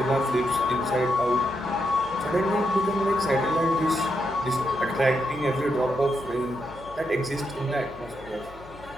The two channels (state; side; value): noise; left; hum, 21 dB below the sound